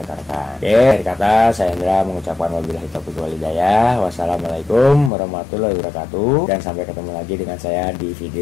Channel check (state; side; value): drops out; right; at 5.1 s